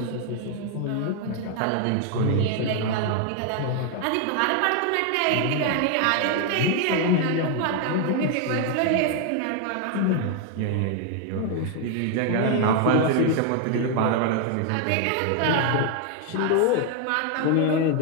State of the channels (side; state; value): both; different; correlation 0.00